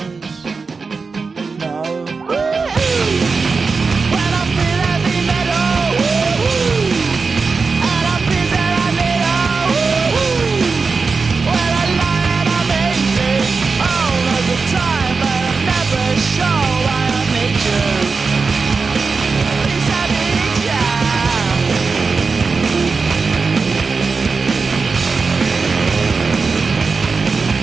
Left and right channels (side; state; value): left; quieter; 4.6 dB